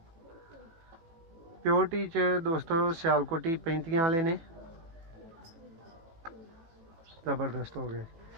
प्योरिटी च दोस्तों सियालकोटी 35 वाले ने जबरदस्त हो गए।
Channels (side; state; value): left; late; 18 ms